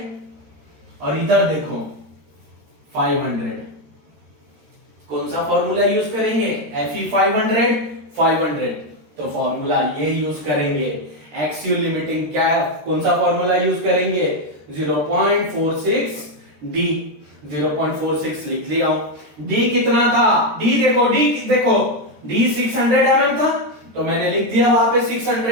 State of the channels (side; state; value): left; late; 13 ms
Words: और इधर देखो 500, कौन सा फॉर्मूला यूज करेंगे, Fe 500, तो फॉर्मूला ये यूज करेंगे। एक्सियल लिमिटिंग क्या, कौन सा फॉर्मूला यूज करेंगे 0.46 डी, 0.46 लिख लिया हूं। डी कितना था, डी देखो, डी 600 mm था, तो मैंने लिख दिया वहां पे